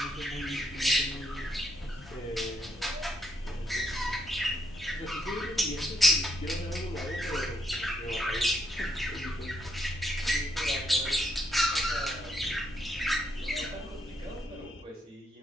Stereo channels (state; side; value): normal; both; correlation 0.76